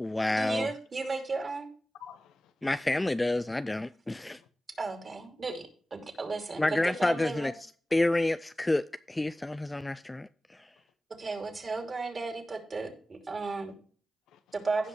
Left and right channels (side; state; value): both; normal; correlation 0.96